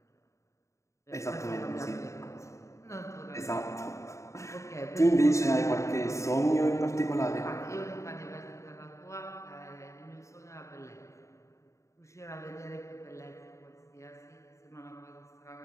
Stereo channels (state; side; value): late; right; 0.14 ms